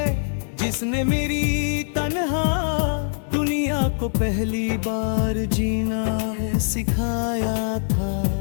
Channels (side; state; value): right; silent; 63 dB below the other